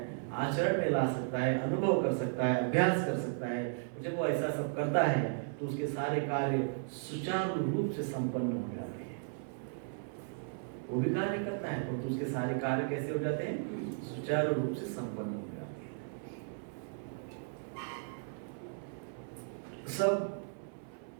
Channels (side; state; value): left; silent; 54 dB below the other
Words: आचरण में ला सकता है, अनुभव कर सकता है, अभ्यास कर सकता है। जब वो ऐसा सब करता है तो उसके सारे कार्य सुचारू रूप से संपन्न हो जाते हैं। वो भी कार्य करता है तो उसके सारे कार्य कैसे हो जाते हैं? सुचारू रूप से संपन्न हो जाते हैं। सब